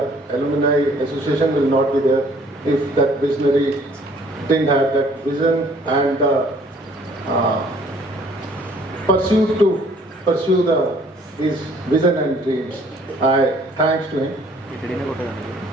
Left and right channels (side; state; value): both; normal; correlation 0.58